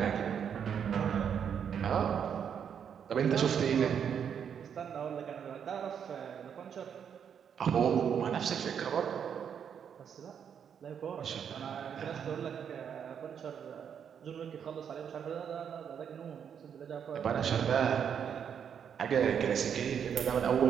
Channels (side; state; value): left; quieter; 7.9 dB